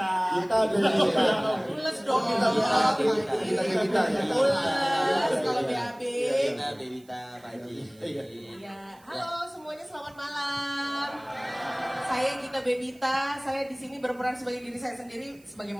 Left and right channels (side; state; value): right; noise; hiss, 29 dB below the sound